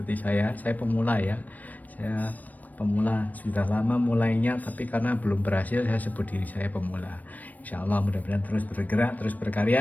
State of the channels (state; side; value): late; right; 0.078 ms